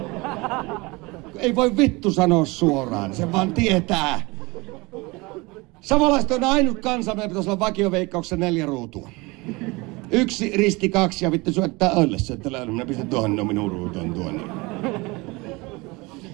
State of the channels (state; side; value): quieter; left; 24.5 dB